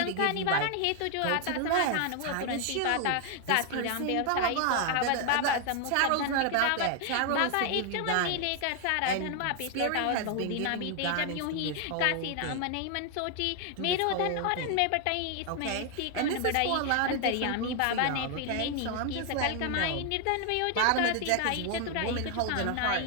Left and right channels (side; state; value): both; different; correlation 0.00